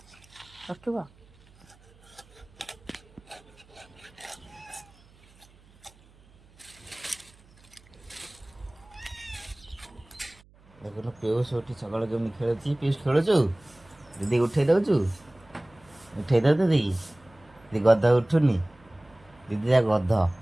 रखा देखो पीयूष उठी सकाल केमी खेलुची पीयूष खेलुचु दीदी उठे दउचु उठे दउ दीदी दीदी गध उठुनी दीदी जा गध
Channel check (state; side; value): noise; right; hum, 27 dB below the sound